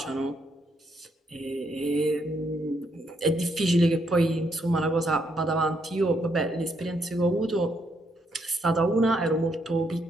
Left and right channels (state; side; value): normal; both; correlation 0.75